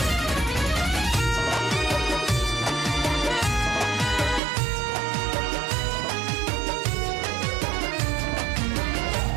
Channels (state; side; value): drops out; left; at 4.4 s